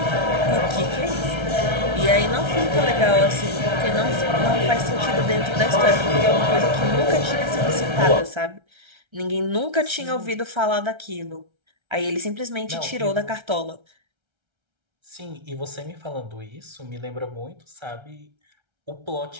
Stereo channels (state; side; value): late; left; 1.3 ms